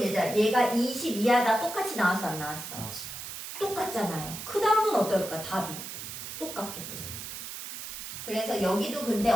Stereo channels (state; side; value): noise; right; hiss, 9 dB below the sound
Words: 얘가 22하다 똑같이 나왔어 안 나왔어? 나왔어요. 똑같잖아요. 그 다음은 어떨까? 답이 똑같겠죠. 그래서 여기도 근데